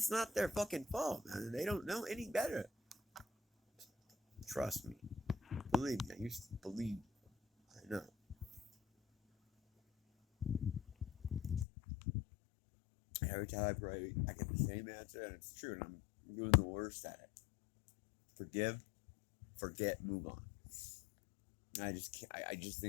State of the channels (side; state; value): right; drops out; at 11.7 s